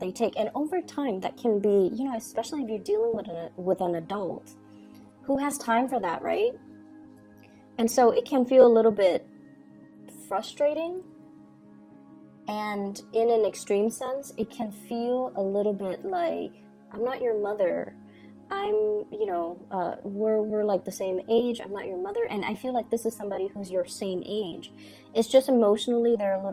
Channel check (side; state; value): both; identical; correlation 1.00